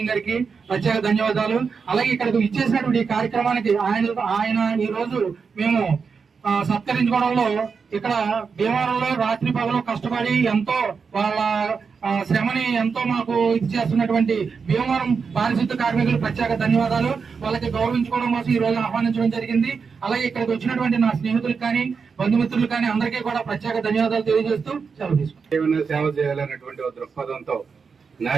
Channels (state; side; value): quieter; left; 5.5 dB